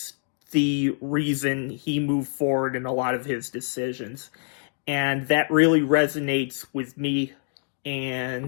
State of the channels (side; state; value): right; silent; digital silence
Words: the reason he moved forward in a lot of his decisions. And that really resonates with me.